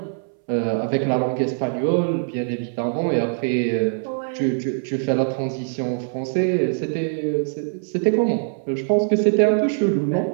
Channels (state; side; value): silent; left; 62 dB below the other